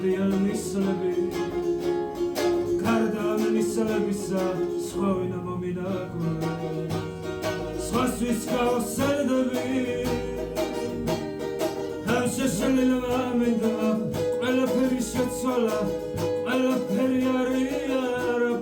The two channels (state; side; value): identical; both; correlation 1.00